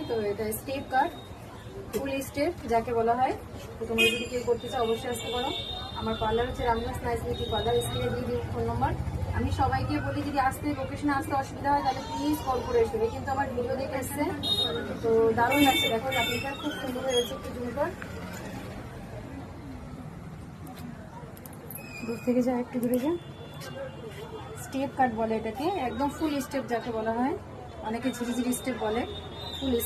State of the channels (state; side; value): identical; both; correlation 1.00